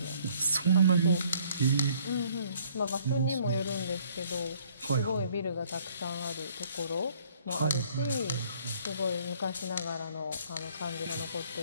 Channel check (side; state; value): both; inverted; correlation -0.61